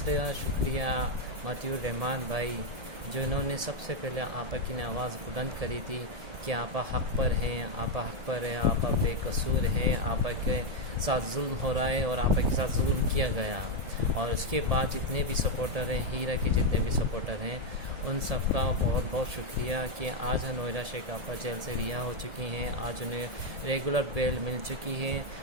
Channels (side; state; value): left; late; 1.7 ms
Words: شکریہ مطیع الرحمان بھائی جنہوں نے سب سے پہلے آپا کی نے آواز بلند کری تھی کہ آپا حق پر ہیں، آپا حق پر ہے، آپا بے قصور ہیں، آپا کے ساتھ ظلم ہو رہا ہے اور آپا کے ساتھ ظلم کیا گیا۔ اور اس کے بعد جتنے بھی سپورٹر ہیں، ہیرا کے جتنے بھی سپورٹر ہیں، ان سب کا بہت بہت شکریہ کہ آج نویرہ شیخ آپا جیل سے رہا ہو چکی ہیں، آج انہیں ریگولر بیل مل چکی ہے۔